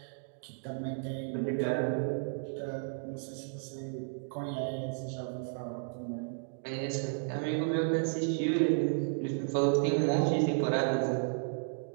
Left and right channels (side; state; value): left; silent; digital silence